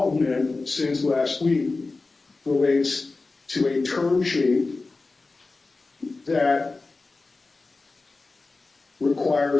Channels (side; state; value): right; quieter; 3.6 dB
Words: since last week relates to a term sheet that